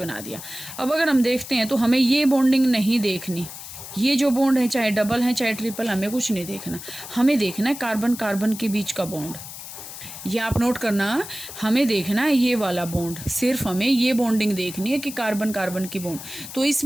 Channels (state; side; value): noise; left; hiss, 12 dB below the sound